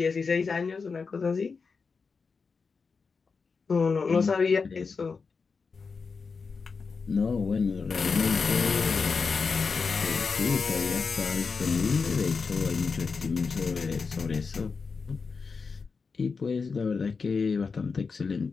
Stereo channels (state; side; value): quieter; right; 4.9 dB